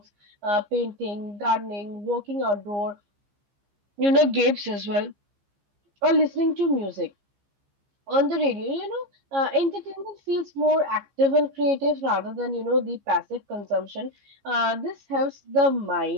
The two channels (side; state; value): left; late; 15 ms